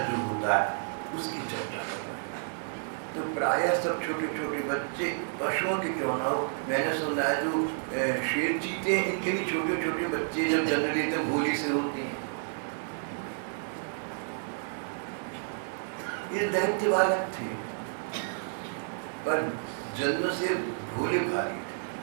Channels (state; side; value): silent; left; digital silence